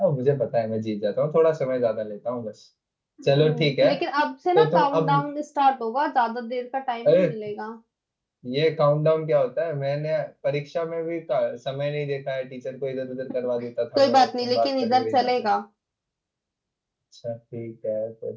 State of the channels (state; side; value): identical; both; correlation 1.00